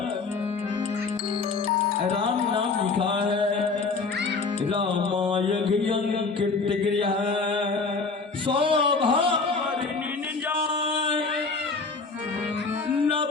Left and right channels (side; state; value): right; quieter; 4.3 dB